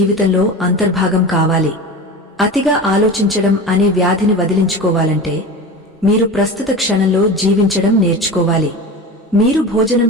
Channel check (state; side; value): normal; both; correlation 0.30